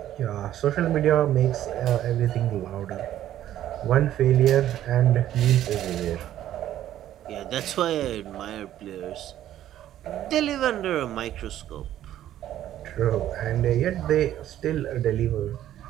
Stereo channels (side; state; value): left; quieter; 12.2 dB